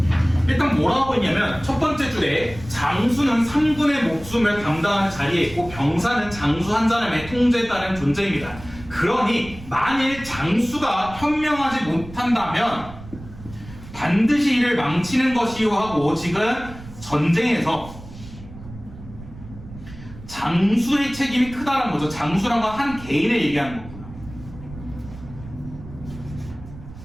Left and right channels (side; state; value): right; noise; rumble, 15 dB below the sound